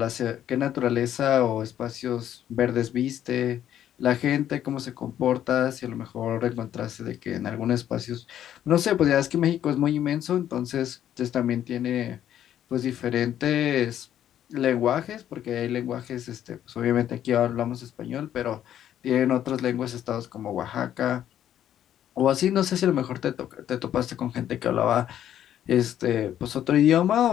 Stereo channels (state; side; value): quieter; right; 10.9 dB